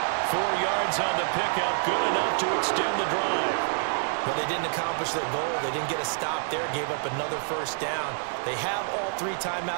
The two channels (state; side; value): silent; left; 59 dB below the other